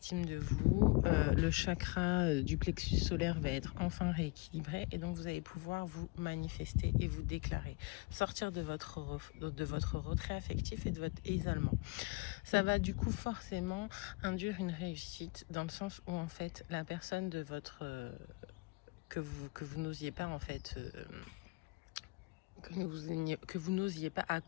de vous. Le chakra du plexus solaire va être enfin rééquilibré et donc vous allez pouvoir vous manifester et vous déclarer, sortir de votre retrait affectif et de votre isolement. Ça va du coup forcément induire une réussite dans le sens où en fait la personne de votre que vous n'osiez pas en fait que vous n'osiez pas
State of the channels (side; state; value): right; quieter; 26.8 dB